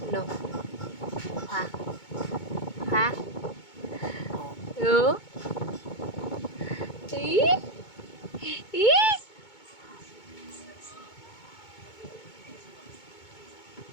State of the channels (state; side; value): late; right; 2.2 ms